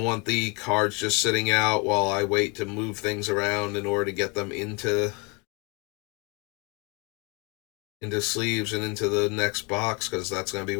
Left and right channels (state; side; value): quieter; right; 30.7 dB